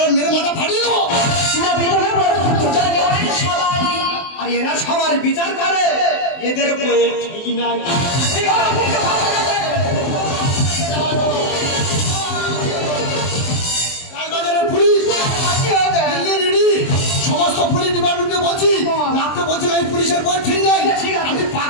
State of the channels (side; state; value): right; late; 23 ms